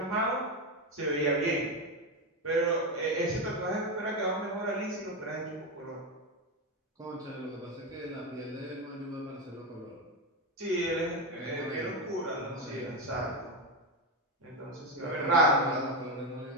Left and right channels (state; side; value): normal; both; correlation 0.12